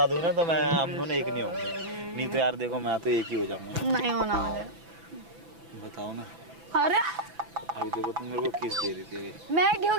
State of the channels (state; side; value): late; left; 6.0 ms